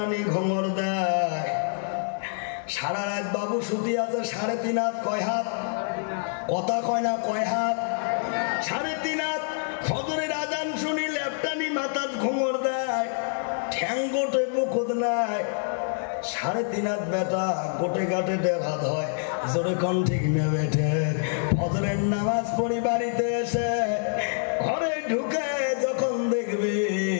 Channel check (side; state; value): right; silent; 61 dB below the other